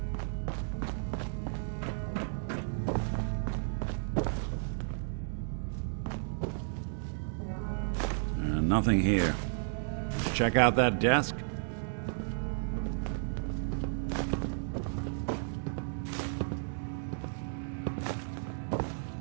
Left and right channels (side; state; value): left; silent; digital silence